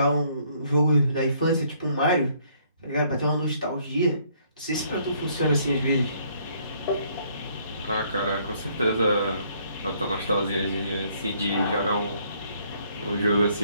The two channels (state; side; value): inverted; both; correlation -0.66